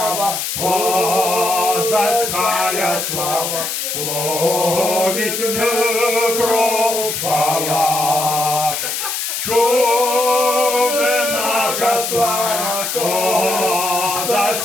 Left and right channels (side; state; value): left; noise; hiss, 3 dB below the sound